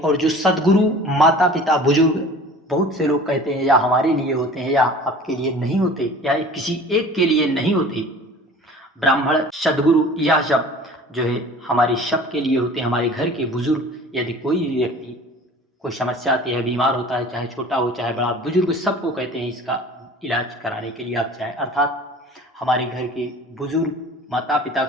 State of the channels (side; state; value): both; normal; correlation 0.43